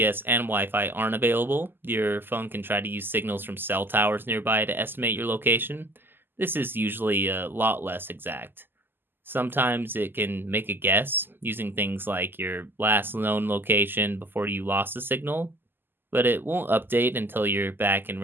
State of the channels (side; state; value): left; late; 0.096 ms